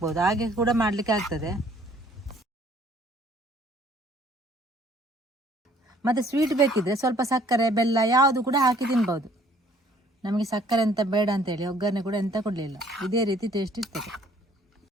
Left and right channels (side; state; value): both; normal; correlation 0.59